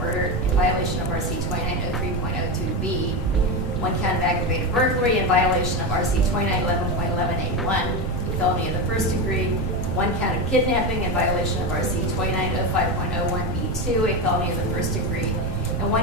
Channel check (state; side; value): noise; right; rumble, 2 dB below the sound